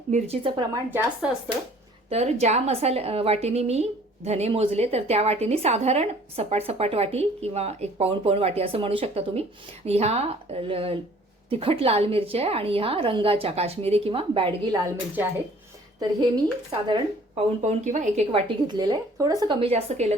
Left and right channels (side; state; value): both; normal; correlation 0.54